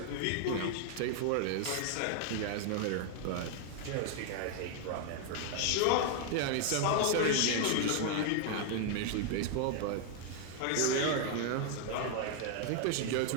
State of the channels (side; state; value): both; different; correlation 0.00